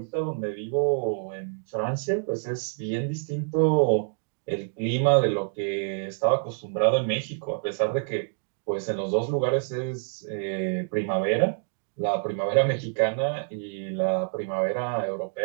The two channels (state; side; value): silent; left; digital silence